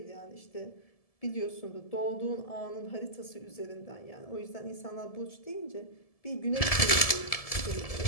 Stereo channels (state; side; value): late; right; 1.7 ms